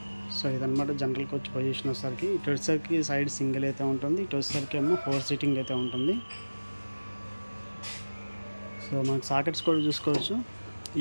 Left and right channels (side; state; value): both; inverted; correlation -1.00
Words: సో ఇదనమాట జనరల్ కోచ్ పొజిషన్ వచ్చేసరికి. ఇటు వచ్చేసరికి సైడ్ సింగిల్ అయితే ఉంటుంది, ఇటు వచ్చేసరికి ఏమో 4 సీటింగ్ అయితే ఉంటుంది. సో మనకి సాకెట్స్ కూడా చూసుకోవచ్చు.